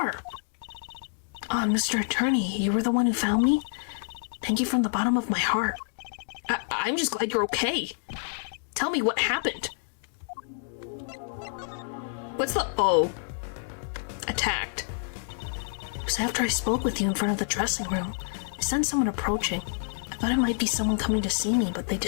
Mr. Attorney, you were the one who found me? Thank you from the bottom of my heart. I'm just glad you're okay. Tell me what happened. What's the O? Attacked. It was after I spoke with you in front of the dressing room. I sensed someone approaching. I thought it might be someone coming to see me, but they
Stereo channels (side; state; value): right; silent; digital silence